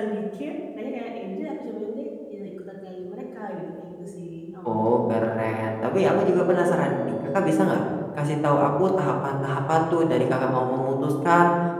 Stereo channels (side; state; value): both; identical; correlation 1.00